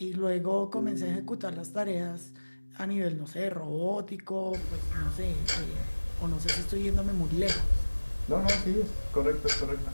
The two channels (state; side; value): inverted; both; correlation -1.00